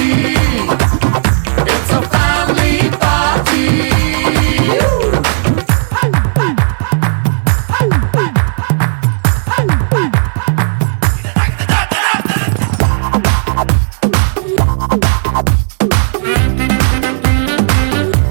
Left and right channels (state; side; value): silent; left; digital silence